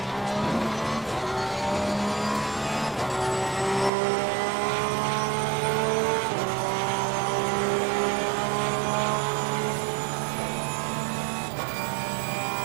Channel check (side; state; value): left; drops out; at 3.9 s